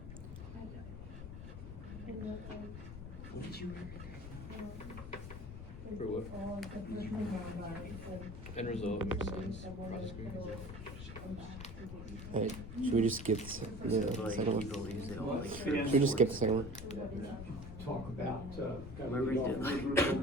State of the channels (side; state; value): left; noise; rumble, 10 dB below the sound